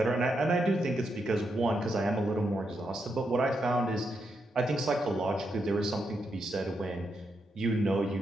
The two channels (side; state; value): both; normal; correlation 0.82